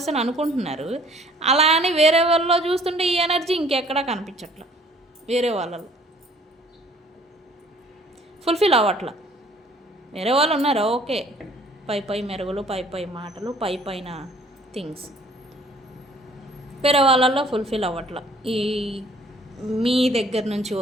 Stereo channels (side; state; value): both; normal; correlation 0.56